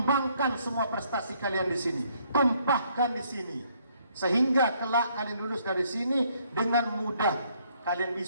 semua prestasi kalian di sini, tumpahkan di sini, sehingga kelak kalian lulus dari sini dengan mudah kalian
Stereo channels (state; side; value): inverted; both; correlation -0.68